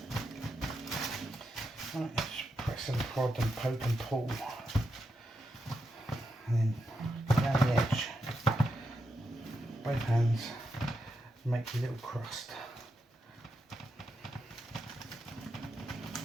Right, just press and prod and poke and pull. And then go down the edge, both hands, make your little crust.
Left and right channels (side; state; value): both; normal; correlation 0.85